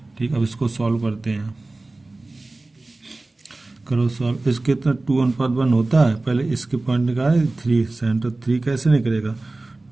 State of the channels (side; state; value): left; quieter; 3.1 dB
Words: ठीक। अब इसको सॉल्व करते हैं, करो सॉल्व। इसके इतना 2:1 होता है, पहले इसके पॉइंट निकाले 3, सेंटर 3 कैसे निकलेगा,